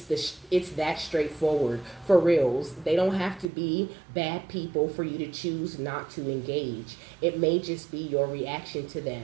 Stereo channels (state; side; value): drops out; left; at 3.5 s